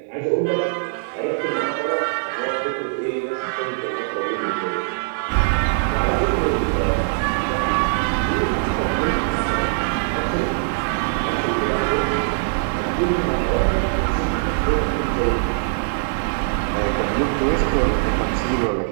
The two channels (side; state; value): left; silent; 60 dB below the other